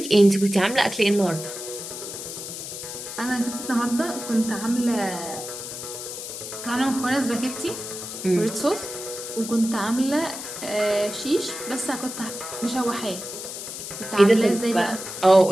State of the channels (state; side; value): noise; left; hiss, 8 dB below the sound